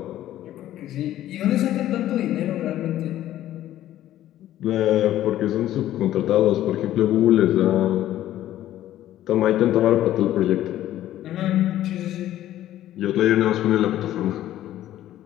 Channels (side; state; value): right; quieter; 13.1 dB